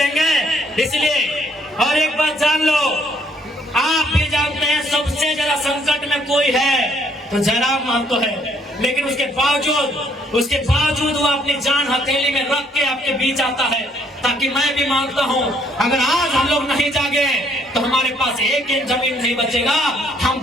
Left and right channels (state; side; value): normal; both; correlation 0.66